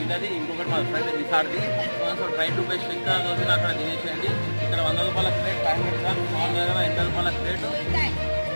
ఇంకొకటి మా ఫ్రెండ్ నిసార్ది. So try to best. ఇంకా రోజున అక్కడ తినేసేయండి. ఇక్కడ 100 రూపాయల ప్లేట్, 500 గ్రామ్స్. మా దగ్గర 80 రూపాయల ప్లేట్.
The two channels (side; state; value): both; inverted; correlation -1.00